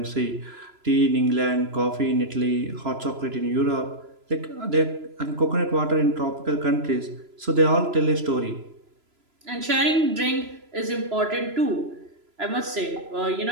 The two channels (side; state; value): left; late; 3.0 ms